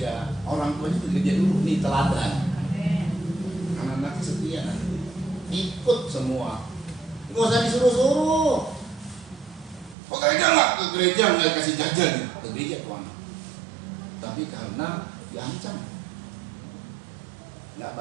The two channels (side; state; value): left; drops out; at 10.0 s